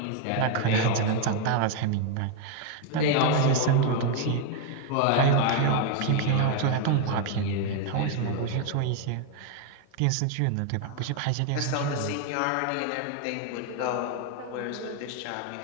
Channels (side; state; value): both; different; correlation 0.01